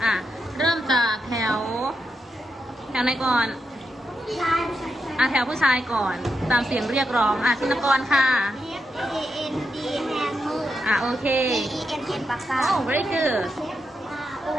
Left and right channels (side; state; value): both; normal; correlation 0.84